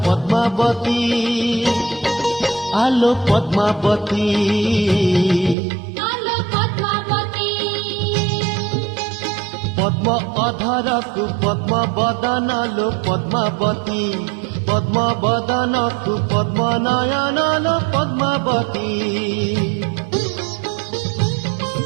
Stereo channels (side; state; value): left; drops out; at 5.6 s